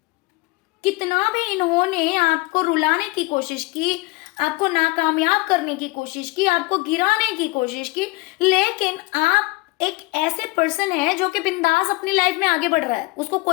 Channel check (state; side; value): quieter; right; 23.4 dB